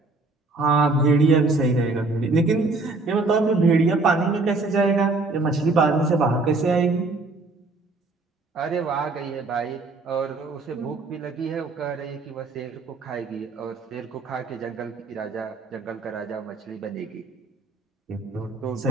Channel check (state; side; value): quieter; left; 3.4 dB